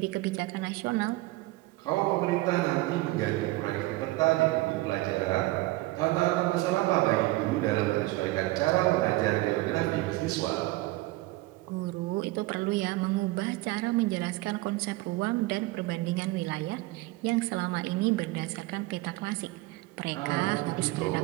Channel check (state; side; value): quieter; left; 19.9 dB